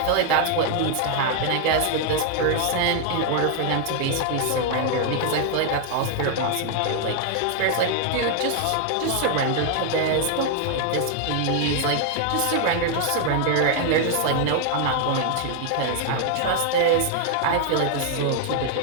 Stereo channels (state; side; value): different; both; correlation 0.00